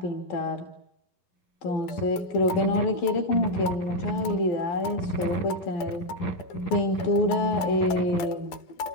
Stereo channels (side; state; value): right; late; 12 ms